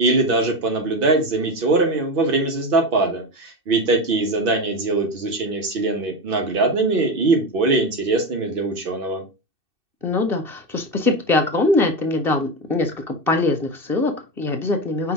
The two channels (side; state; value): left; late; 2.6 ms